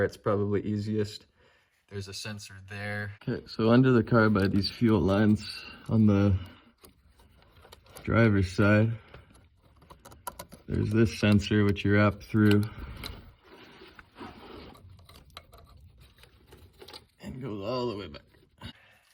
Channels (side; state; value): both; identical; correlation 1.00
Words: It's probably easiest. There's a sensor there. Okay, so under the car by these fuel lines on the driver's side, there's this sensor which you wrap through and goes all the way back.